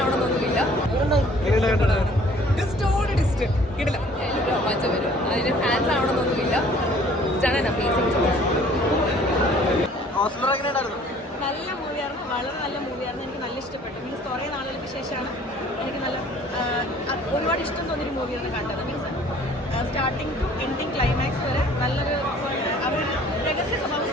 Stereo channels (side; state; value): both; normal; correlation 0.54